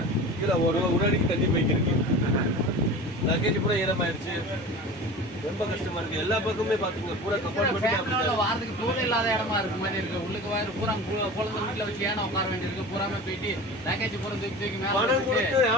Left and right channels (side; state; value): both; normal; correlation 0.35